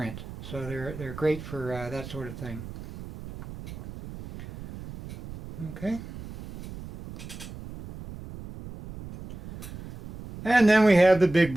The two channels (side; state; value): right; noise; rumble, 13 dB below the sound